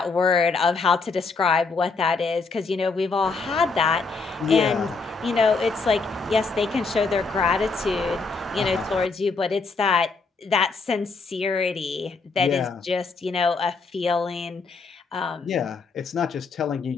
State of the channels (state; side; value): quieter; right; 4.3 dB